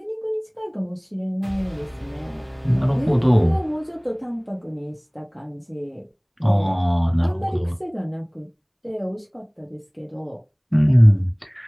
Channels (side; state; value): both; identical; correlation 1.00